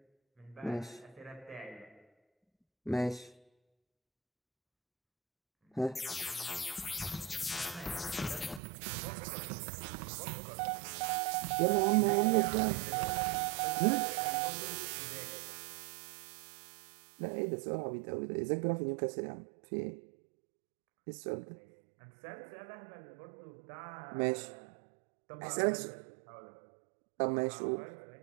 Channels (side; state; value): left; drops out; at 8.6 s